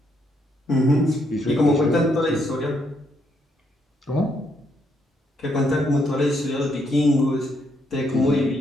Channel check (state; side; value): normal; both; correlation 0.74